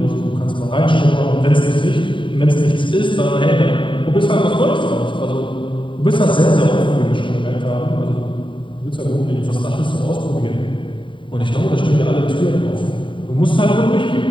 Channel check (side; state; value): right; late; 0.24 ms